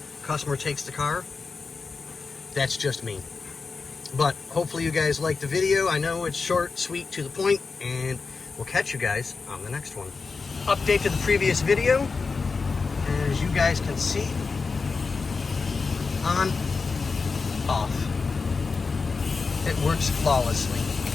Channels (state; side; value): quieter; right; 4.6 dB